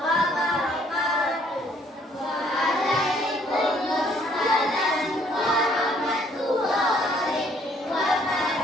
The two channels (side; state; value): both; normal; correlation 0.63